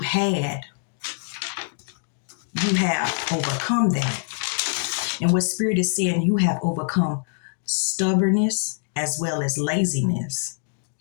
had, you have overcome that. And what Spirit is saying, you have overcome stubbornness as well as laziness.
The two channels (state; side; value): silent; right; digital silence